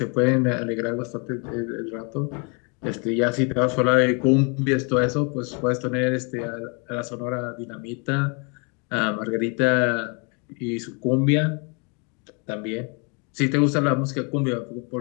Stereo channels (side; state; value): right; quieter; 34.6 dB